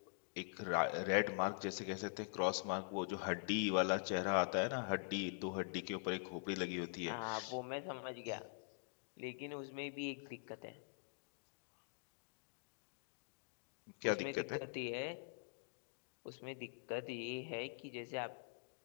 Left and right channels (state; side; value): silent; right; digital silence